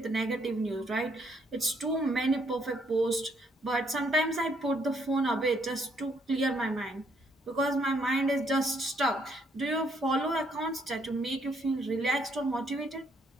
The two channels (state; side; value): normal; both; correlation 0.70